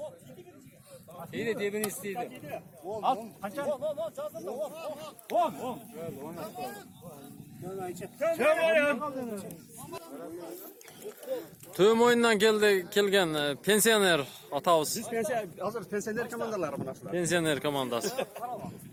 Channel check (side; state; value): both; identical; correlation 1.00